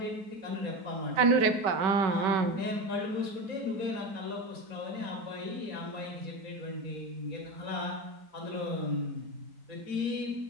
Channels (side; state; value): left; late; 5.2 ms